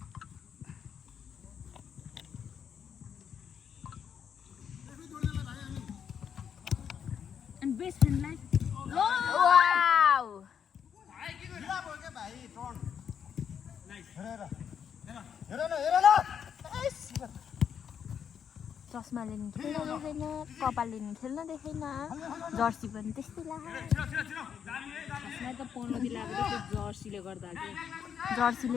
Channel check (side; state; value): right; quieter; 7.9 dB